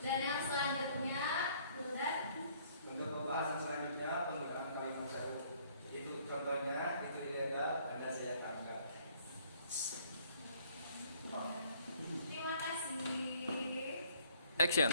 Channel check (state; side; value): inverted; both; correlation -0.61